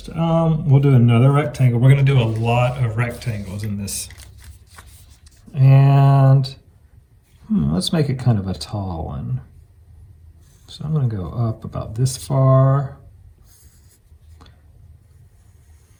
We'll do another rectangle. We're going to do a lot of rectangles in this. And let's make it kind of a tall one. So I'm going to go up about this far.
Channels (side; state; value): both; identical; correlation 1.00